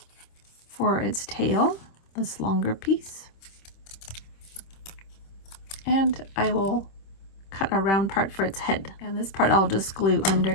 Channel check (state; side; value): late; right; 26 ms